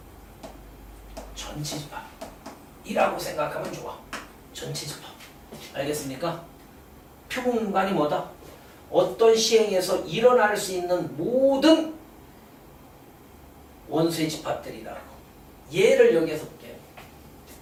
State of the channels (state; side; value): identical; both; correlation 1.00